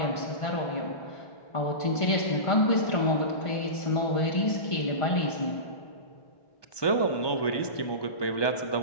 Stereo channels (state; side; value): late; right; 1.2 ms